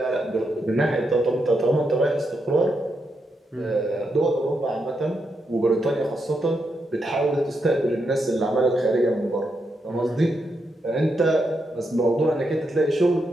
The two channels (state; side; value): normal; both; correlation 0.83